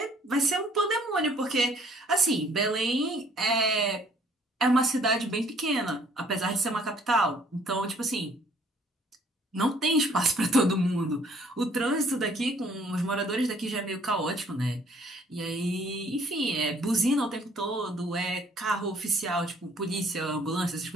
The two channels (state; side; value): normal; both; correlation 0.60